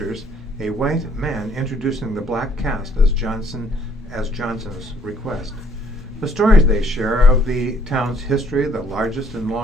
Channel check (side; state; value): both; normal; correlation 0.64